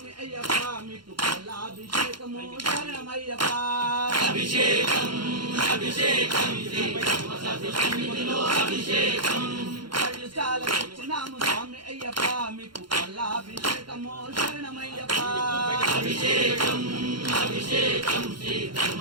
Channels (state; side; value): late; left; 0.72 ms